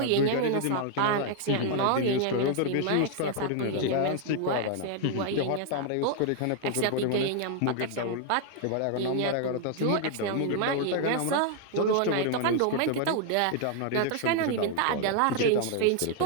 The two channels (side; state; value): both; different; correlation 0.00